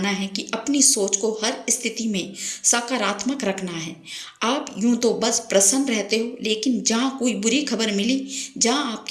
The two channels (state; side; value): identical; both; correlation 1.00